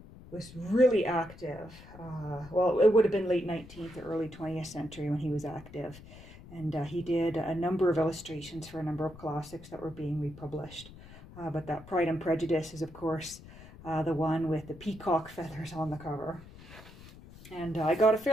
was really active. Well, it would have been late 19th or early 20th century when he was active. And he did a number of illustrations for a number of classics that were being republished. But that Pride and Prejudice is, of course, the one with the peacock feathers on the cover. And I got a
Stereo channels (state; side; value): noise; left; rumble, 18 dB below the sound